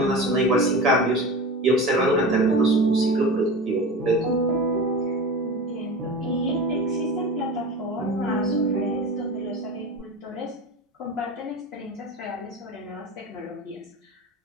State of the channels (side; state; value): both; normal; correlation 0.30